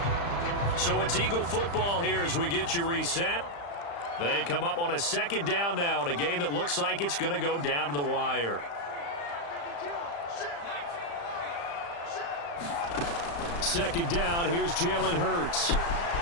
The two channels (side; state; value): right; late; 35 ms